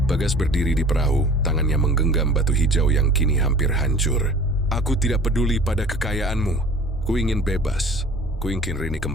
Bagas berdiri di perahu, tangannya menggenggam batu hijau yang kini hampir hancur. "Aku tidak peduli pada kekayaanmu. Ku ingin bebas. Ku ingin Rini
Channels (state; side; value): normal; both; correlation 0.46